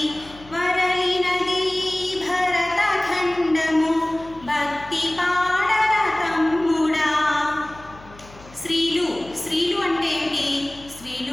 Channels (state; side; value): noise; left; hum, 21 dB below the sound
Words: వరలినది భరతఖండము భక్తి పాడర తమ్ముడా. స్త్రీలు అంటే ఏంటి?